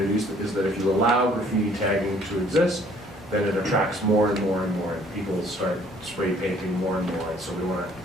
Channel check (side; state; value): both; normal; correlation 0.59